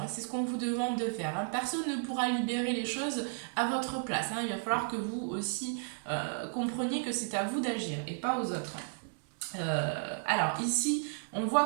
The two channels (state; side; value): silent; left; digital silence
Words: Hein, c'est ce qu'on vous demande de faire. Hein. Personne ne pourra libérer les choses à votre place. Hein. Il va falloir que vous aussi compreniez que c'est à vous d'agir et pas aux autres. Alors ici, on